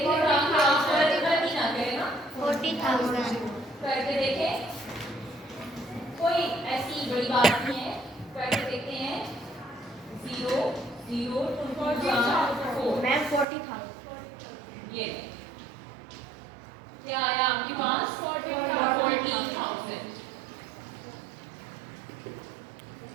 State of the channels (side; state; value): left; drops out; at 13.5 s